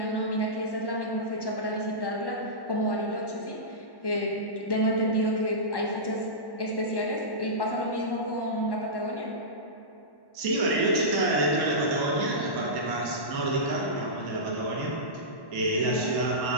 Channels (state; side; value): late; right; 1.1 ms